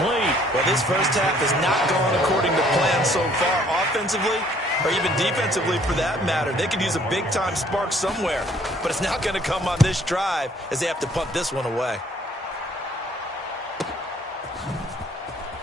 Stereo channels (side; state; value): both; normal; correlation 0.60